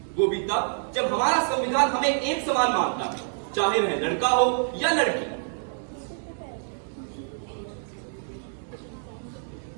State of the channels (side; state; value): left; silent; digital silence